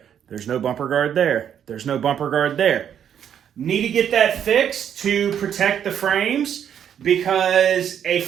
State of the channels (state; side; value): quieter; left; 9.0 dB